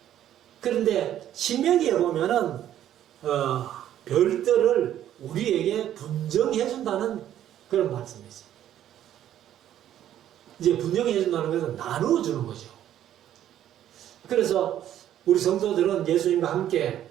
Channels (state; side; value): quieter; left; 11.4 dB